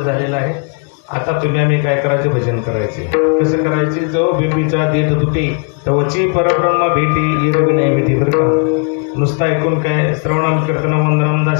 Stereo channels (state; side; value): quieter; right; 38.7 dB